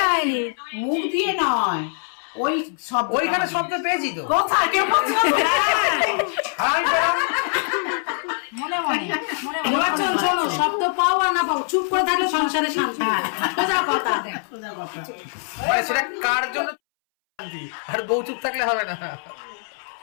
হয়নি, মুখ দিয়ে নয়, ওই সব ওইখানে শব্দ পেয়েছি তো। কোথায় কেউ বলছে না? আর আমি পেলাম। নির্বাচন শোনো, শব্দ পাও আর না পাও, চুপ করে থাকলে সংসারে শান্তি। সোজা কথা। মানে সেটা কার জন্য শান্তি, আর বউ চুপ থাকলে হবে না।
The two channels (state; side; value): silent; right; 63 dB below the other